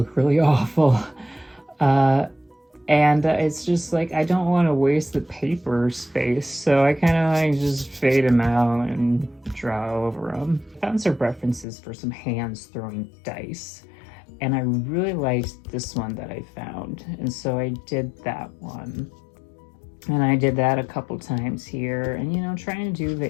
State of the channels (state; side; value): drops out; right; at 11.7 s